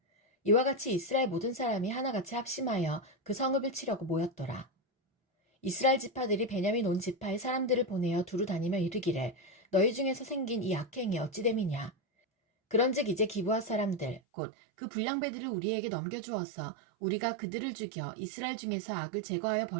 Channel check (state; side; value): drops out; left; at 14.2 s